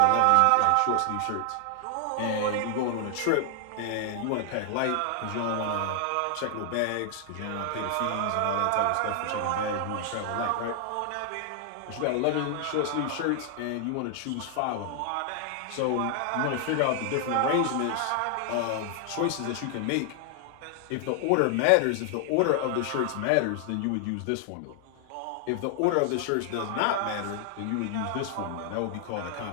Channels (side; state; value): both; different; correlation 0.00